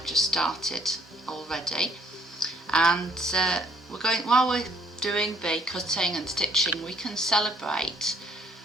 just started already, and while we're doing the cutting and stitching, we can celebrate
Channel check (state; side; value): normal; both; correlation 0.64